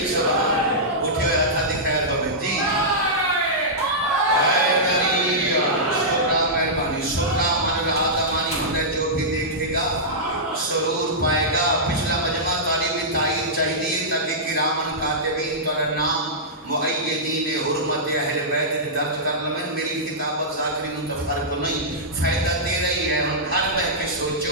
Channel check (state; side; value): normal; both; correlation -0.13